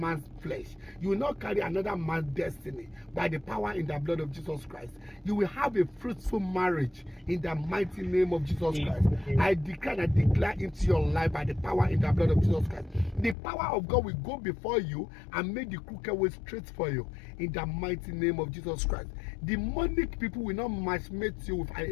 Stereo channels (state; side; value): drops out; right; at 13.4 s